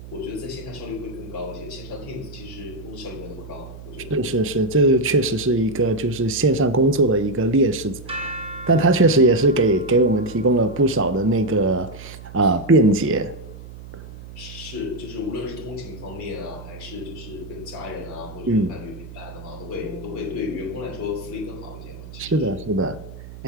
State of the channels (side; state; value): right; noise; hum, 15 dB below the sound